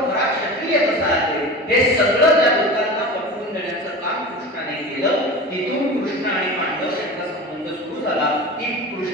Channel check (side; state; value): both; normal; correlation 0.32